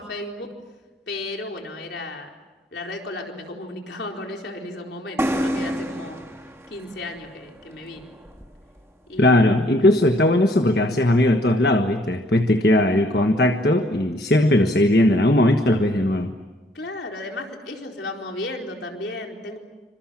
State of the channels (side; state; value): both; normal; correlation 0.64